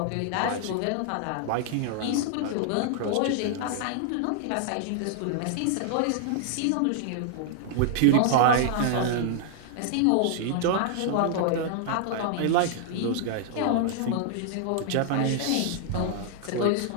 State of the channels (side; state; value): both; different; correlation -0.01